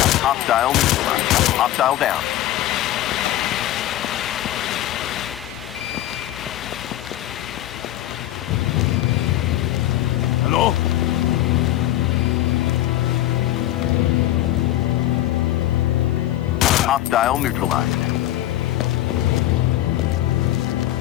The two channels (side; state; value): right; quieter; 14.0 dB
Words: Hostile neutralized. Hostile down. Hello? Hostile neutralized.